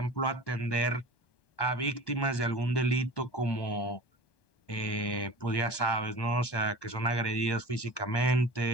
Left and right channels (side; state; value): right; late; 1.2 ms